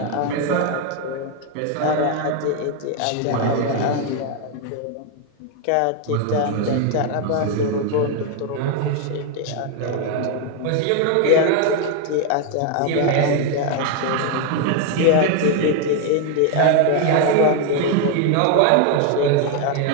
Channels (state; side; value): different; both; correlation 0.01